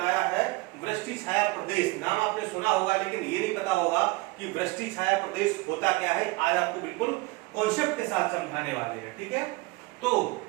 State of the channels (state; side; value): quieter; left; 22.8 dB